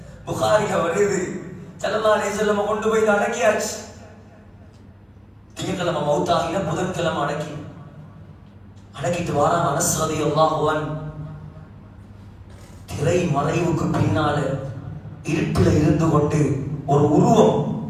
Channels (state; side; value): identical; both; correlation 1.00